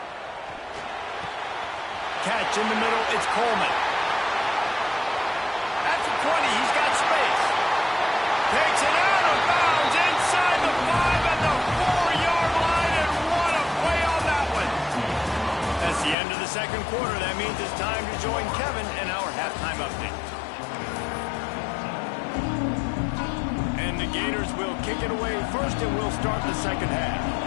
Catch in the middle, it's Coleman. At the 20, he's got space. Takes it out of bounds inside the 5 at the 4-yard line, and what a play on that one. That's the end of the 2nd quarter. That means it's time to join Kevin and our halftime update. And the Gators will kick it away first, and we'll start the 2nd half.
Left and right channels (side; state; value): right; drops out; at 16.2 s